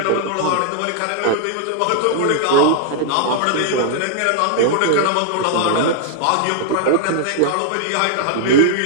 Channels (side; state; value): both; different; correlation -0.01